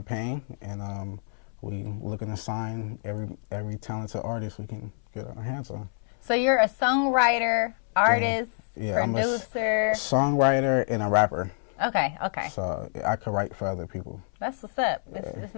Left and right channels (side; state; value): right; silent; 60 dB below the other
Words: and we looking to sign every talented artist we can get our hands on. So you're a songwriter, artist, producer? I'm a songwriter and a rapper. Okay. So I could write for other people. That's what's up. It's